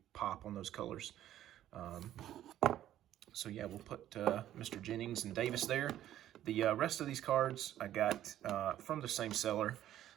pop on those colors. So yeah, we'll put Mr. Jennings and Davis there. The rest of these cards I got from the same seller.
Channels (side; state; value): left; quieter; 12.3 dB